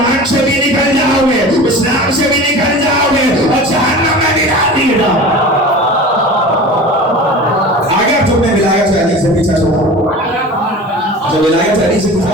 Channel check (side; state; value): both; normal; correlation 0.36